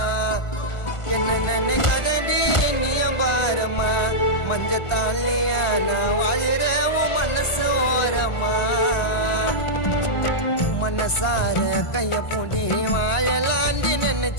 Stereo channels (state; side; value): late; right; 1.5 ms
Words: என்ன நினைக்காதடி நீயம் பாரமா மஞ்ச தாலியா நான் வாழற உன் மனசு ஓரமா மனசார கைய பூடி வாழலாண்டி